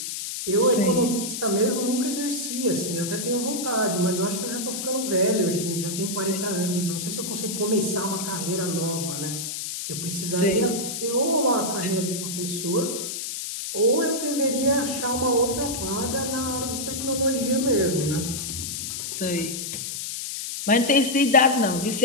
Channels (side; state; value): left; noise; hiss, 5 dB below the sound